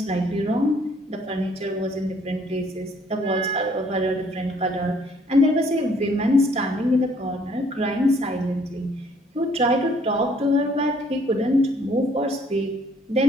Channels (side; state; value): both; normal; correlation 0.62